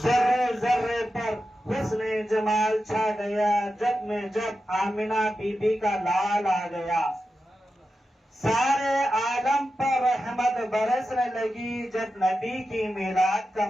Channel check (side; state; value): both; normal; correlation 0.91